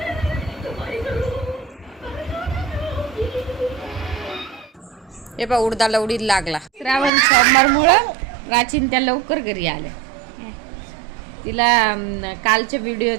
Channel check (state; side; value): drops out; left; at 7.1 s